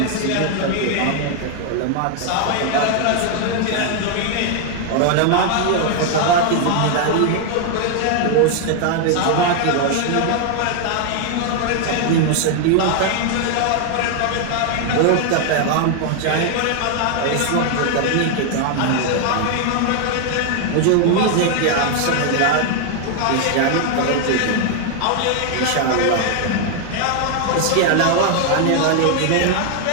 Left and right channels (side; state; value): both; different; correlation 0.00